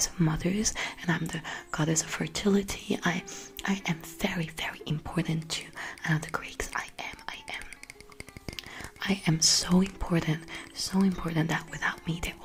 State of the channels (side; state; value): both; identical; correlation 1.00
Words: of mothers, and I'm the goddess of fertility. I am very important to the Greeks. I am so important that without me they're